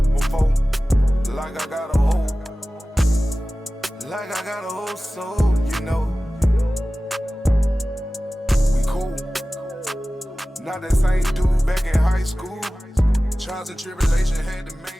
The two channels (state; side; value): normal; both; correlation 0.96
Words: before. Like I got a whole soul, you know. Not that same dude back in high school. Trials and tribulation had to